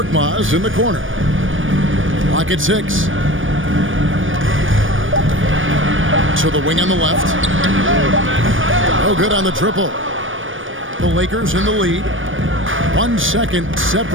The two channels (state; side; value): late; left; 0.57 ms